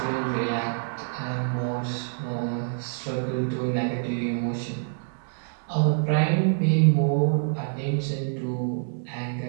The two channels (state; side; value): silent; left; digital silence